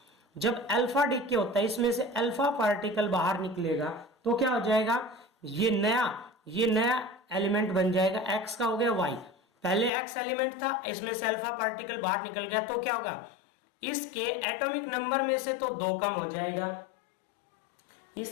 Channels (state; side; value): drops out; right; at 9.9 s